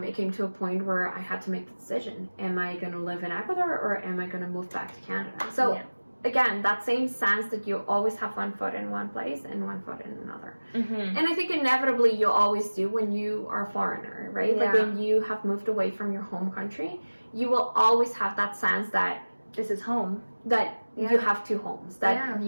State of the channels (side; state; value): both; inverted; correlation -1.00